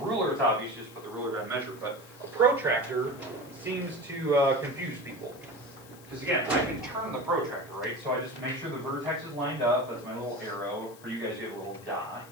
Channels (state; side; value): noise; left; hiss, 22 dB below the sound